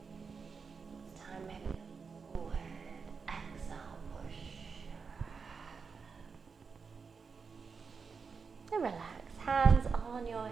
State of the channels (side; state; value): left; quieter; 5.3 dB